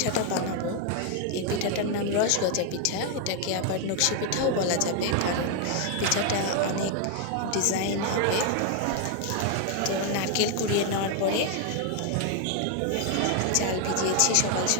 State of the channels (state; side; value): different; both; correlation 0.01